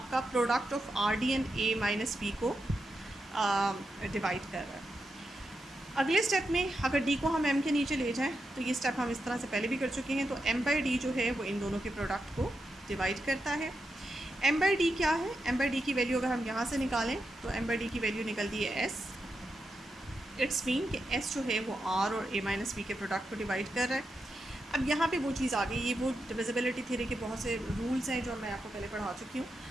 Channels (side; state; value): both; normal; correlation 0.86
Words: product of R D and A minus B को डिवाइड कर रहा है। अगले स्टेप में अगर डी को हम एम के नीचे ले जाएं तो ये स्टेप हम इस तरह से पहले भी कर चुके हैं, तो एम बाई डी जो है वो इन दोनों के प्रोडक्ट को डिवाइड करता है। एम बाई डी क्या है, एम बाई डी की वैल्यू अगर हम यहाँ से निकालें तो एम बाई डी की वैल्यू निकलती है एस। इट्स मीन कि एस जो है वो आर और ए माइनस बी के प्रोडक्ट को डिवाइड कर रहा है। अब यहाँ पे वो चीज़ आ गई, ये वो डिविजिबिलिटी थ्योरी के बहुत से रूल्स हैं जो मैं आपको पहले पढ़ा चुकी हूँ,